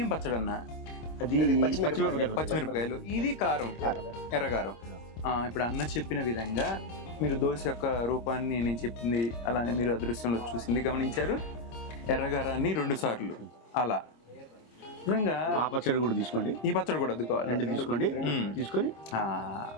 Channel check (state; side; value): late; right; 26 ms